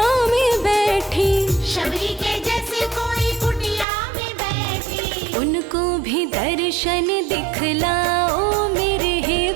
में बैठी। शबरी के जैसे कोई कुटिया में बैठी। उनको भी दर्शन दिखलाओ मेरे हे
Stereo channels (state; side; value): drops out; left; at 3.9 s